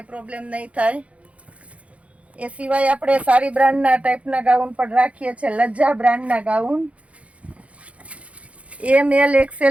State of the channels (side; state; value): left; late; 0.064 ms